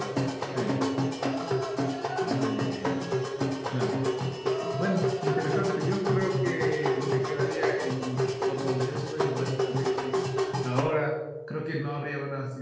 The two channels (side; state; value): both; identical; correlation 1.00